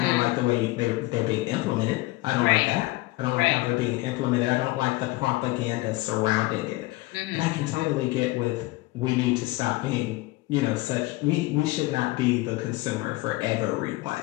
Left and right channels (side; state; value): right; quieter; 20.6 dB